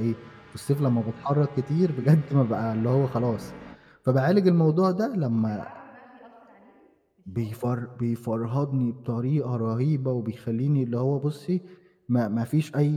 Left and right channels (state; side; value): identical; both; correlation 1.00